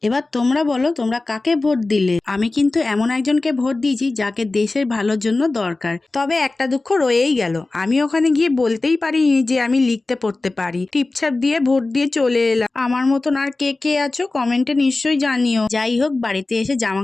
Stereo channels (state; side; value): quieter; right; 3.2 dB